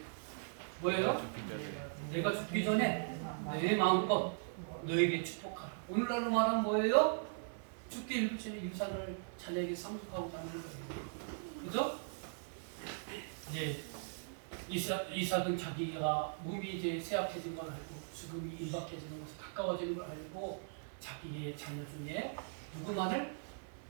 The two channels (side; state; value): left; silent; 52 dB below the other